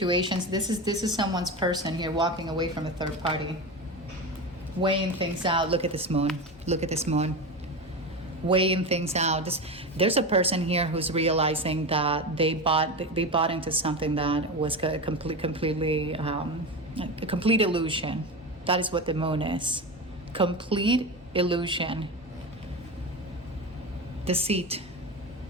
This is someone's person here walking away from a third party. Weighing things out. Look at this moon. Look at this moon. Weighing things out. There's a person here who's realizing that they bought into something that was a complete illusion. That is what the moon is. Complete illusion. Deceit.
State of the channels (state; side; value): normal; both; correlation 0.22